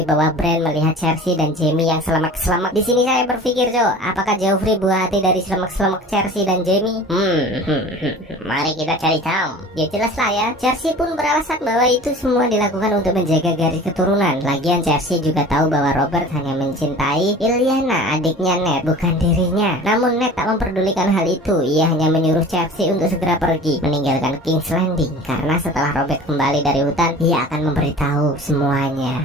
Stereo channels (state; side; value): normal; both; correlation 0.41